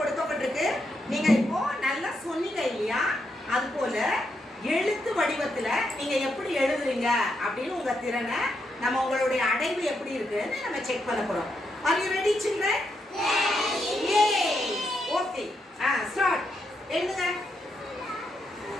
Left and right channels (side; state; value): both; normal; correlation 0.81